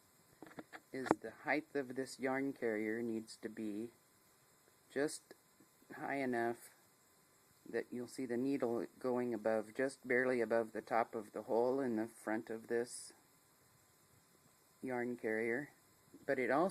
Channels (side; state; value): both; identical; correlation 1.00